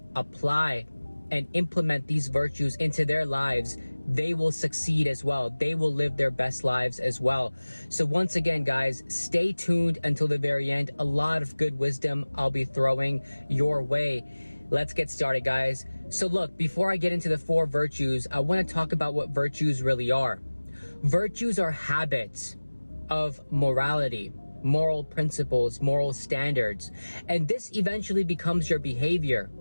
apply and implement these virtues into their lives, they will succeed as well. They will live their best lives as well. So once again, guys, stay tuned until the very end. A lot of good wisdom I'll be throwing your way. Let's get started, guys. So look, before I get into the 4 virtues, I want to talk about what virtues really are. Virtues are habits of morality, moral principles, moral standards, and this eventually becomes your behavior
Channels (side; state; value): both; inverted; correlation -1.00